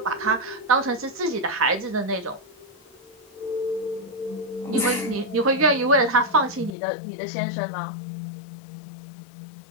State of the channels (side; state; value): right; drops out; at 6.8 s